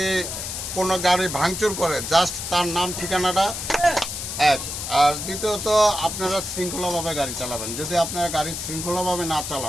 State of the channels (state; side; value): noise; left; hiss, 6 dB below the sound